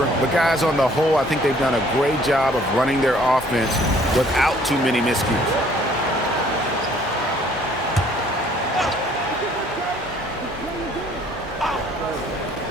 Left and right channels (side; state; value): both; normal; correlation 0.59